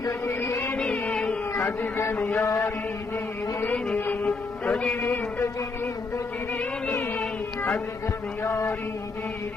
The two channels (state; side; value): quieter; right; 3.9 dB